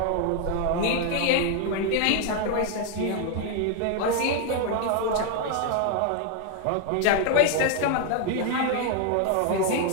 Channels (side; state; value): both; different; correlation 0.01